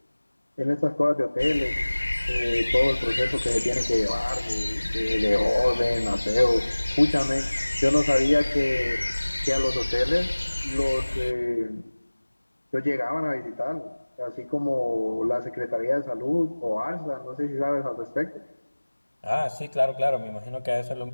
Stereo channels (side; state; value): both; inverted; correlation -1.00